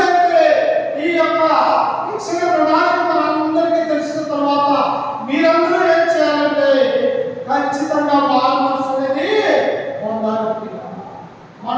ఈ యొక్క రక్షణ ప్రణాళిక మనందరికీ తెలిసిన తర్వాత మీరందరూ ఏం చేయాలంటే ఖచ్చితంగా మారు మనసు అనేది పొందాలి.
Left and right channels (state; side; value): identical; both; correlation 1.00